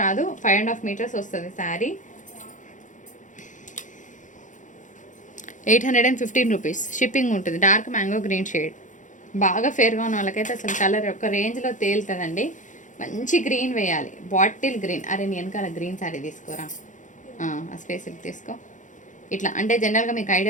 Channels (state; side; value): late; right; 0.37 ms